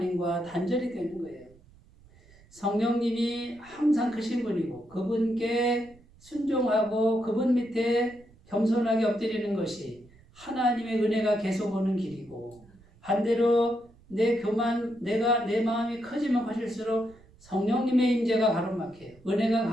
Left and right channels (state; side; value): noise; right; rumble, 27 dB below the sound